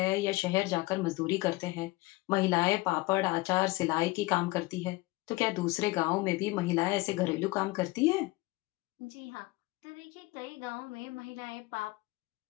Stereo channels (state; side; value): quieter; right; 20.8 dB